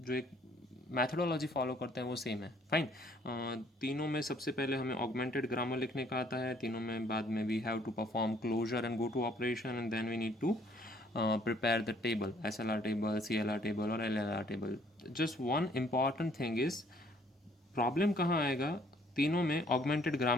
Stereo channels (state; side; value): normal; both; correlation 0.62